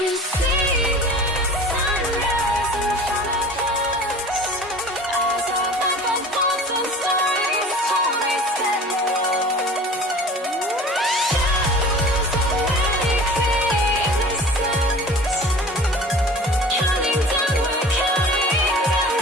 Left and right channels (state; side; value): normal; both; correlation 0.41